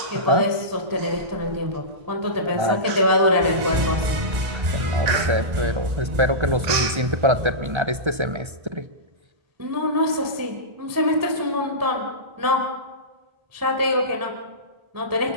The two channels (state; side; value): late; left; 1.3 ms